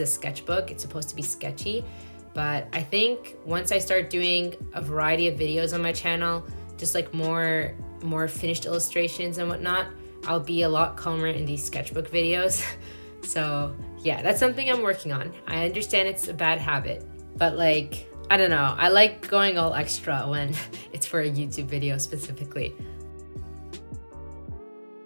sketchbook, it's supposed to be sketchy. But I think once I start doing a variety of videos on my channel, just like more finished illustrations and whatnot, I'll be a lot calmer in these sketchbook videos. So yeah, that's something I'm working on. I understand it's a bad habit, but like, I don't know. I like going all extra when it's for a YouTube video specifically.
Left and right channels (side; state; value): both; inverted; correlation -1.00